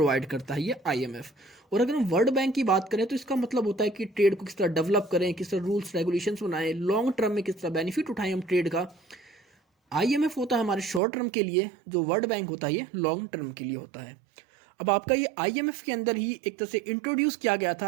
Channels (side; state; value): left; drops out; at 11.0 s